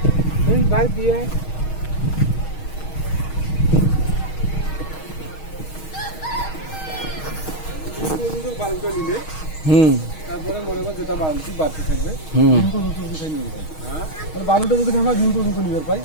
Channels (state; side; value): late; right; 6.4 ms